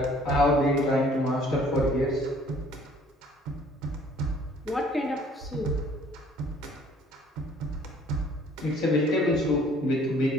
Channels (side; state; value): both; normal; correlation 0.57